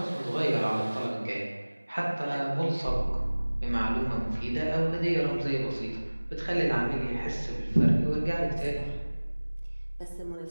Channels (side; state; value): both; inverted; correlation -1.00